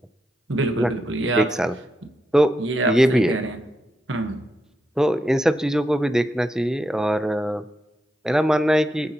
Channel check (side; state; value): both; normal; correlation 0.84